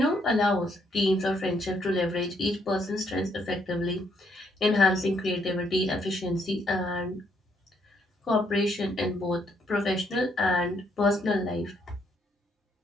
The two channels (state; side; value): normal; both; correlation 0.72